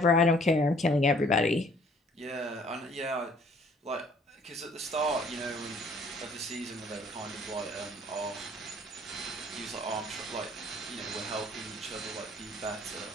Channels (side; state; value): both; normal; correlation 0.58